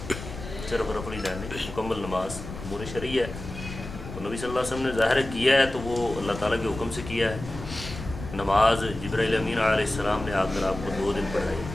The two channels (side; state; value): left; noise; rumble, 11 dB below the sound